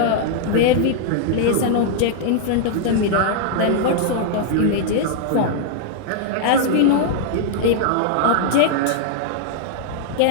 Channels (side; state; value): both; different; correlation -0.01